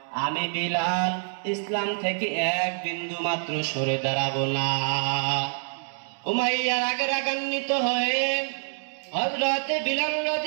আমি বিলাল ইসলাম থেকে এক বিন্দু মাত্র সরে দাঁড়াবো না। উমাইয়া রাগে রাগান্বিত হয়ে হযরতে বিলাল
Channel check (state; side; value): silent; left; digital silence